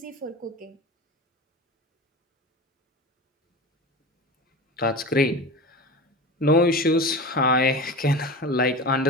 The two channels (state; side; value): normal; both; correlation 0.30